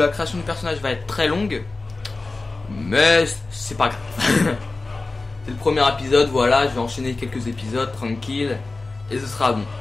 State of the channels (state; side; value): quieter; right; 3.4 dB